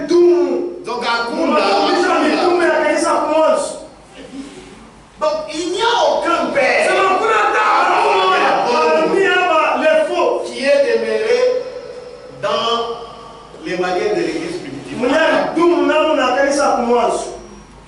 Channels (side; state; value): both; identical; correlation 1.00